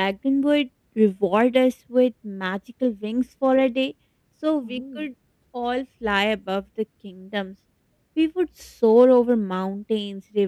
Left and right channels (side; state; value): both; identical; correlation 1.00